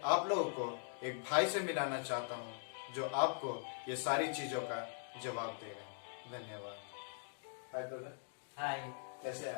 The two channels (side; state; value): right; silent; digital silence